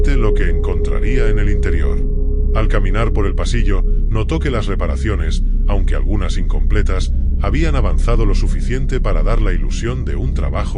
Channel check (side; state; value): both; identical; correlation 1.00